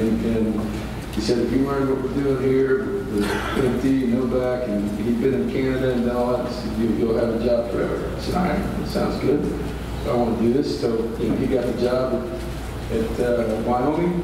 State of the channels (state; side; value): identical; both; correlation 1.00